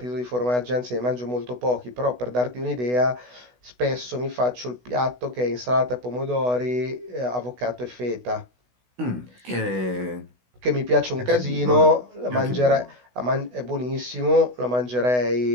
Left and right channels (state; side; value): late; left; 16 ms